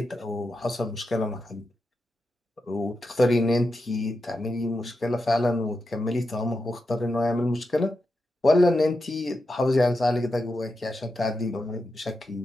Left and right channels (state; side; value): normal; both; correlation 0.88